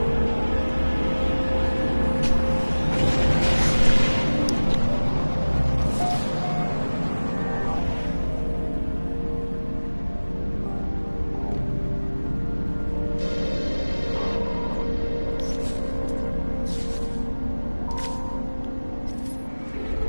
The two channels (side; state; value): both; inverted; correlation -1.00